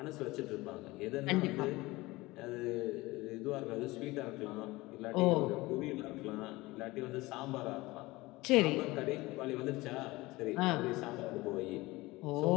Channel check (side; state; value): right; quieter; 20.8 dB